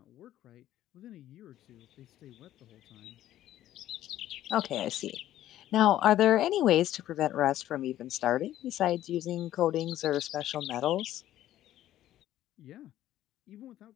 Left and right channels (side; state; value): right; quieter; 13.1 dB